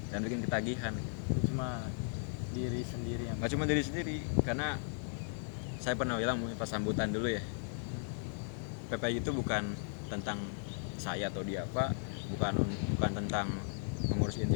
dan bikin ketagihan. Cuma diri sendiri yang Nggak cuma diri sendiri, karena saya pernah bilang pas sambutan dulu ya, PPI itu bukan tentang saya atau dia apa, bukan tentang pengurus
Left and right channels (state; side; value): silent; right; 54 dB below the other